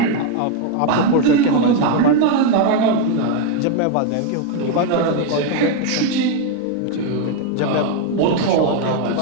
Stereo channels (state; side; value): different; both; correlation 0.01